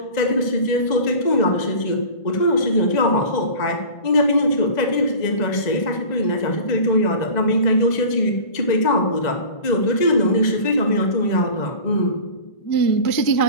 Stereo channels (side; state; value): right; late; 1.9 ms